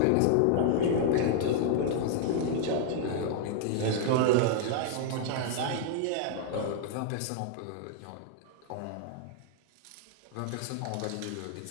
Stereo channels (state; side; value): different; both; correlation -0.01